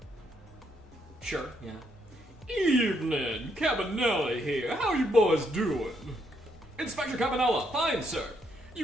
Sure, yeah. Evening, Cabanelli here. How you boys doing? Inspector Cabanella, fine, sir.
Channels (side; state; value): both; normal; correlation 0.74